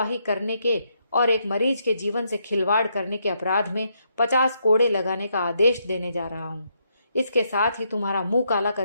करने के और एक मरीज के जीवन से खिलवाड़ करने के अपराध में 50 कोड़े लगाने का आदेश देने जा रहा हूं। इसके साथ ही तुम्हारा मुंह काला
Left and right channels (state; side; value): inverted; both; correlation -0.77